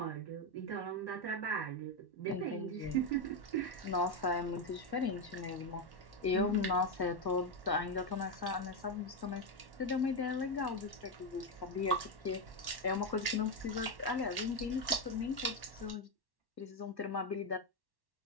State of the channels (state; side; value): late; right; 1.1 ms